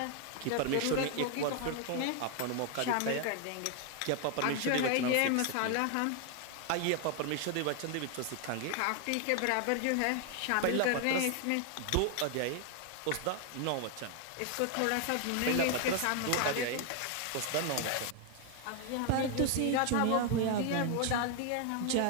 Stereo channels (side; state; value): both; different; correlation 0.00